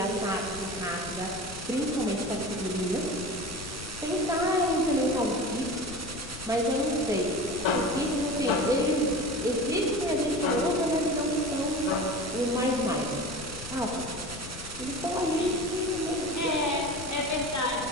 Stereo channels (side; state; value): left; noise; rumble, 14 dB below the sound